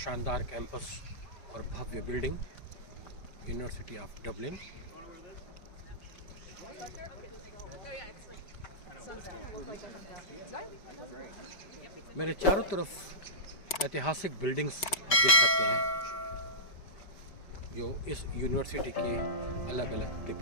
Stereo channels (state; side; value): late; right; 5.2 ms